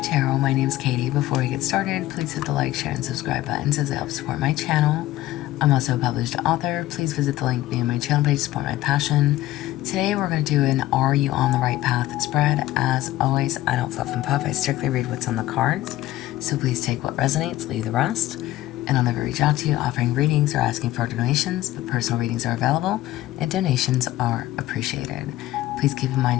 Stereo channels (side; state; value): right; quieter; 15.4 dB